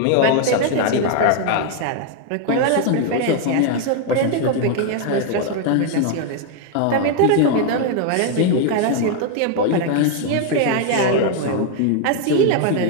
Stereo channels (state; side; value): different; both; correlation 0.00